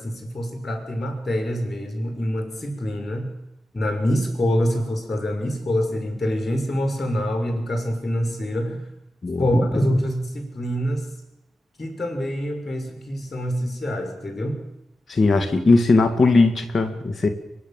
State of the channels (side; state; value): both; normal; correlation 0.92